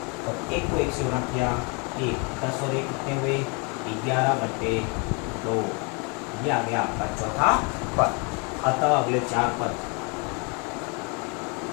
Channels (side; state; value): right; quieter; 32.8 dB